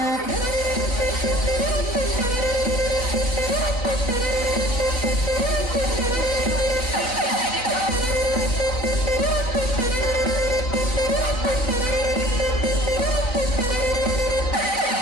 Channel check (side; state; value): right; late; 4.0 ms